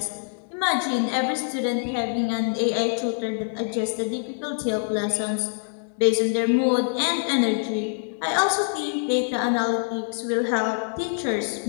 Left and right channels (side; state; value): right; silent; digital silence